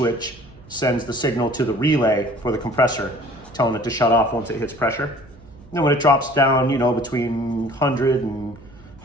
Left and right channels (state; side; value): noise; right; hum, 24 dB below the sound